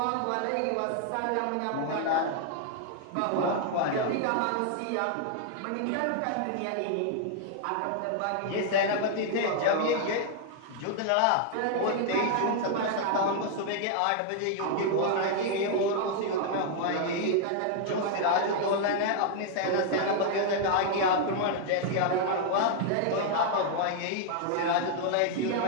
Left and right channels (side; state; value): both; different; correlation 0.00